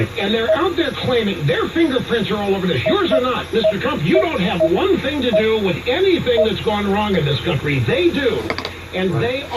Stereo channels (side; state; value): both; identical; correlation 1.00